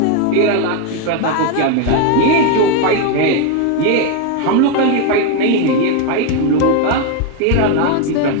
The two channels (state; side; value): different; both; correlation 0.01